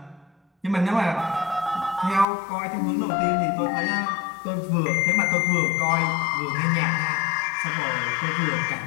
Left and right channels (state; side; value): drops out; right; at 2.2 s